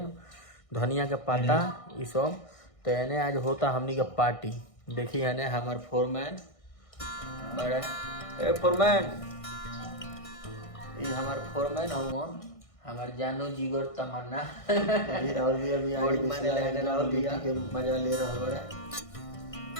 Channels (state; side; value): late; right; 1.6 ms